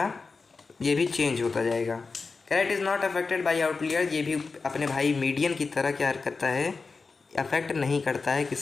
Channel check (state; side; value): quieter; right; 4.4 dB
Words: ये भी चेंज होता जाएगा। कह रहा है it is not affected by outlier, ये भी अपने भाई मीडियन की तरह क्या करता है, अफेक्ट नहीं करता है